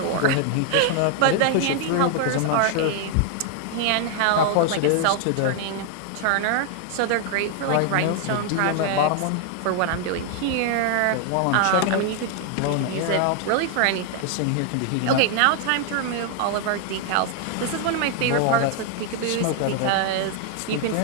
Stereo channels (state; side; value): different; both; correlation 0.00